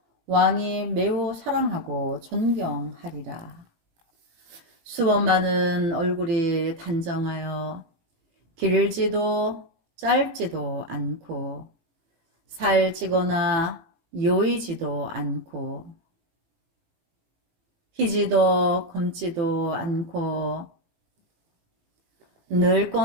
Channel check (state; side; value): late; left; 18 ms